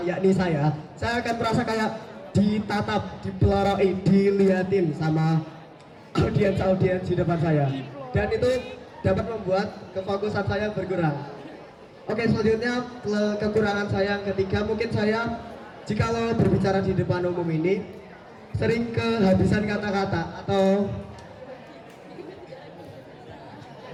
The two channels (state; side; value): identical; both; correlation 1.00